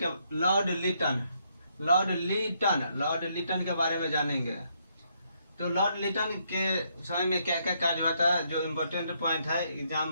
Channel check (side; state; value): both; inverted; correlation -0.74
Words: बारे में जानेंगे। तो लॉर्ड लिटन के समय में क्या क्या कार्य हुआ था, जो इम्पोर्टेंट पॉइंट है